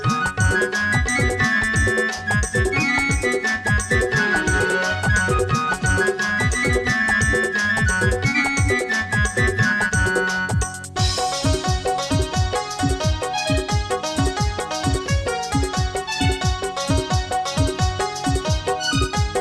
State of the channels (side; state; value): both; identical; correlation 1.00